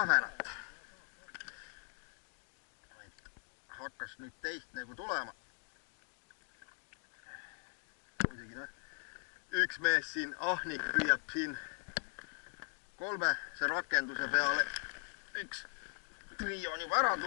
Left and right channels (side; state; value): right; silent; 51 dB below the other